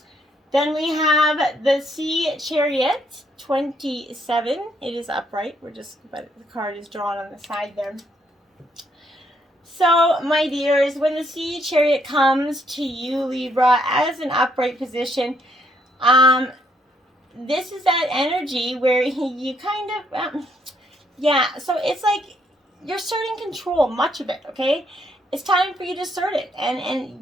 Then we have the Sea Chariot, 27. It is upright. But the card is drawn on the side there. So, my dears, when the Sea Chariot comes to you, Libra, as an upright position, this is that energy where you kind of, so it's like you're asserting control, much of it, okay? It's time for you to assert it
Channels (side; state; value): both; normal; correlation 0.72